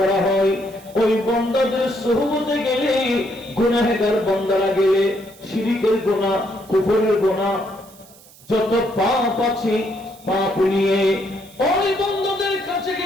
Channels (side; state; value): right; noise; hiss, 24 dB below the sound